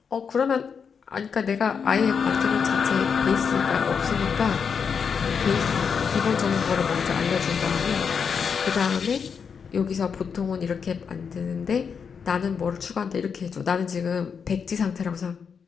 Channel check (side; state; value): right; quieter; 6.4 dB